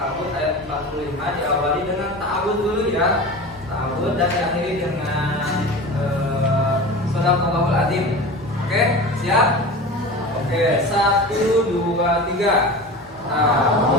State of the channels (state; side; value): normal; both; correlation 0.32